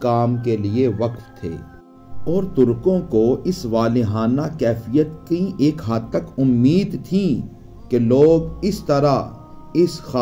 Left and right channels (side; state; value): both; identical; correlation 1.00